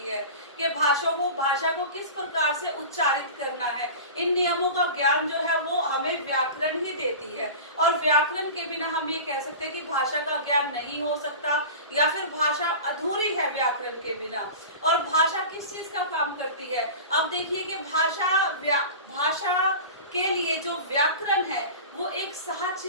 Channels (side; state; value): both; inverted; correlation -0.33